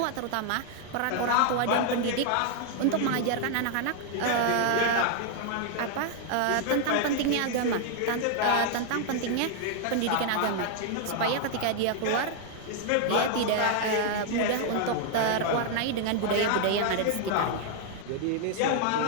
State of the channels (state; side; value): different; both; correlation 0.00